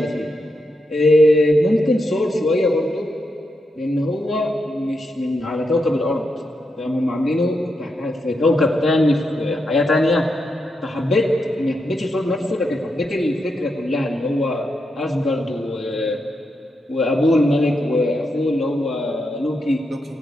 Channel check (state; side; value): normal; both; correlation 0.84